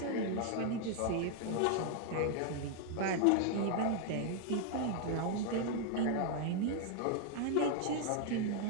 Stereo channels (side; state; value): both; different; correlation 0.00